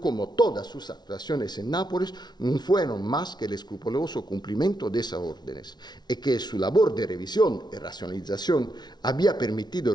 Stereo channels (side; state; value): right; late; 0.20 ms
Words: como todas sus actuaciones en Nápoles no fueron más que el escrupuloso cumplimiento de esas órdenes y que su labor de revisión y racionalización había